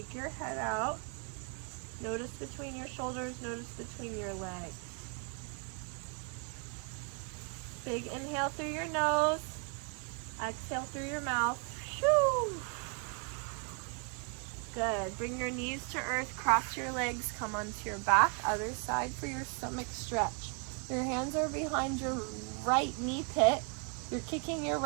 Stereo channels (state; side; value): quieter; left; 37.4 dB